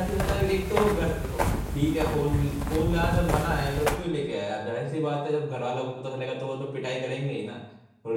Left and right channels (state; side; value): identical; both; correlation 1.00